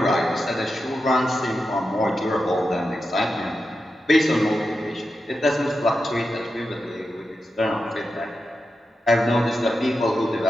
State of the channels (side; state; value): both; normal; correlation 0.89